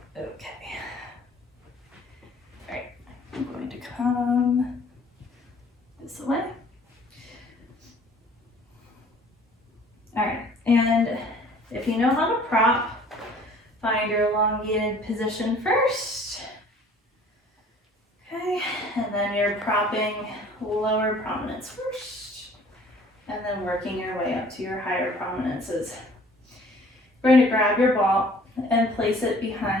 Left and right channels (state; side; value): normal; both; correlation 0.53